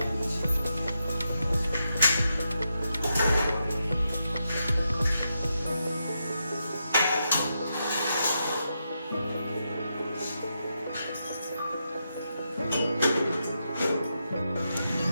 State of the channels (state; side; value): inverted; both; correlation -0.85